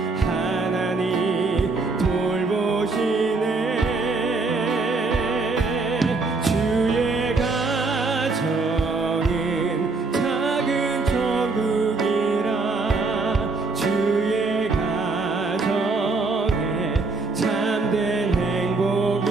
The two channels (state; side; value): quieter; left; 3.8 dB